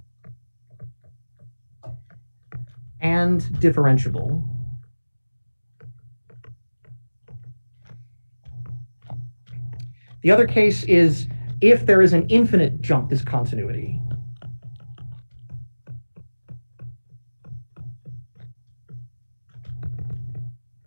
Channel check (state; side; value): inverted; both; correlation -1.00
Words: and differentiable. The other case is if there is an infinite jump discontinuity.